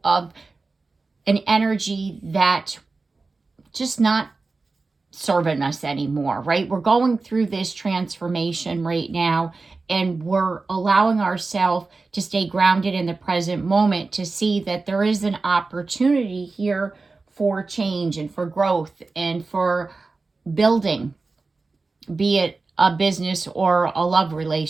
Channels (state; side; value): quieter; left; 3.8 dB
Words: of an energy that just not serving us anymore, right? We're going through this transformation right now, and we're allowing ourselves to stay grounded in the present moment, to see that there is an opportunity here for change and for growth and for building, be it a business or a love